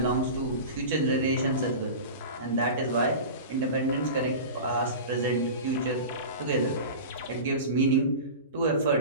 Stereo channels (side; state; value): both; inverted; correlation -0.31